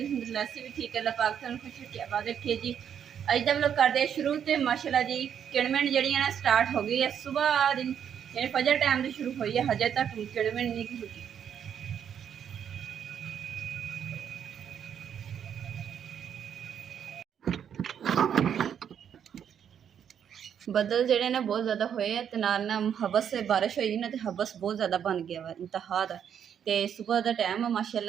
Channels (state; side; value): quieter; left; 8.5 dB